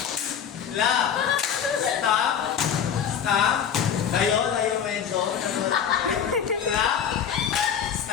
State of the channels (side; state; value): right; quieter; 8.2 dB